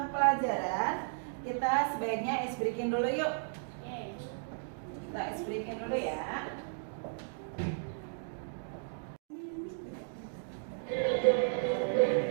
pelajaran, kita sebaiknya ice breaking dulu yuk. Kita ice breaking dulu ya.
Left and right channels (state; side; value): silent; left; digital silence